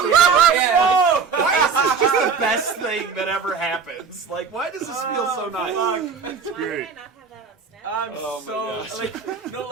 Yeah. Why is this just the best thing that ever happens? Like, why does this feel so nice? Why did I great. not have that on Snapchat? I'm Oh my so gosh. like, no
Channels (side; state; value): left; quieter; 5.7 dB